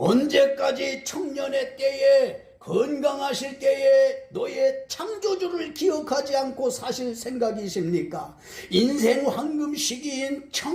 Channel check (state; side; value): identical; both; correlation 1.00